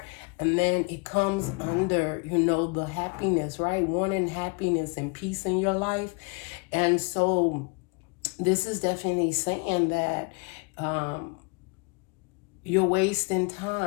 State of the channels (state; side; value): quieter; right; 32.3 dB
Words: and then it comes under, the happiness, right? Wanting happiness and peace in your life. And so this is definitely saying that you're wasting